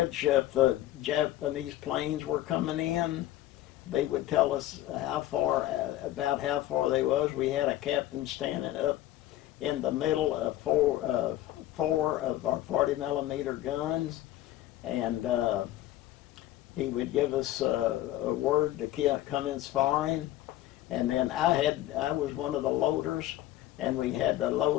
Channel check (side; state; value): right; quieter; 14.5 dB